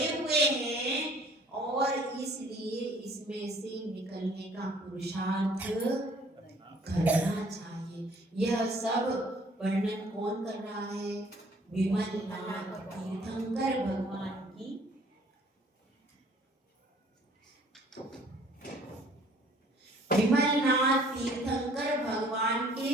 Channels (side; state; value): both; normal; correlation 0.57